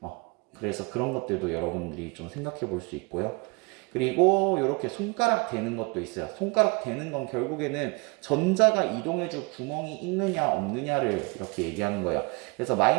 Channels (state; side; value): quieter; left; 29.4 dB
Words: 그래서 그런 것들도 여러분들이 좀 생각해 볼 수 있고요. 그리고 이렇게 손가락 대는 것도 있어요. 손가락 대는 건 결국에는 전자가 이동해줄 구멍이 있느냐 없느냐를 이렇게 얘기하는 거예요. 그래서